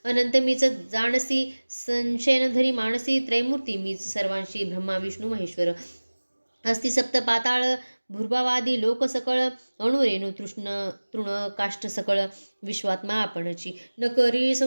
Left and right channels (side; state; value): both; inverted; correlation -1.00